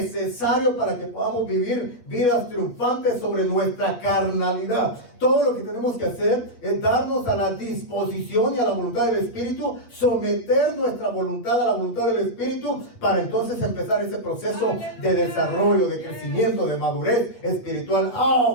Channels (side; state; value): right; late; 8.4 ms